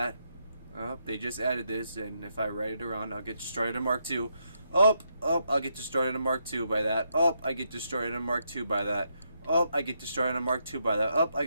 Oh, they just added this, and if I write it around, I'll get destroyed in Mark II. I'll get destroyed in a Mark II by that. I get destroyed in a Mark II by that. I get destroyed in a Mark II by that. I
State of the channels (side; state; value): both; inverted; correlation -0.79